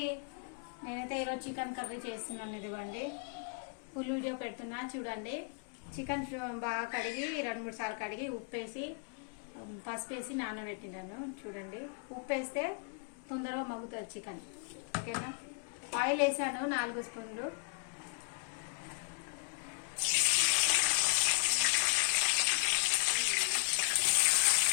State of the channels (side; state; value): right; quieter; 38.2 dB